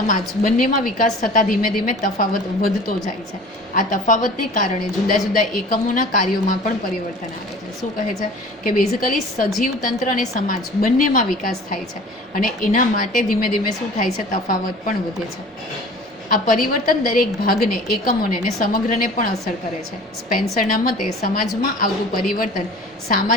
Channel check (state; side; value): normal; both; correlation 0.43